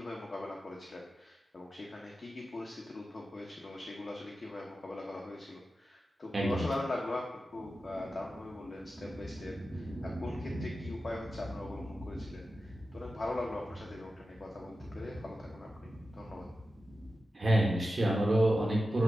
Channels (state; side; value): normal; both; correlation 0.92